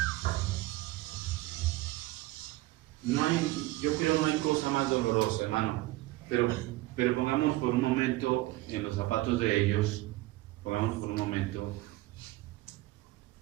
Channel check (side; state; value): left; quieter; 18.5 dB